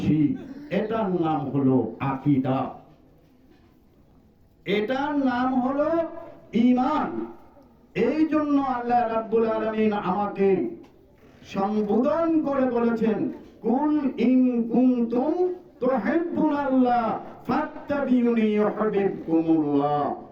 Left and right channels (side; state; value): both; identical; correlation 1.00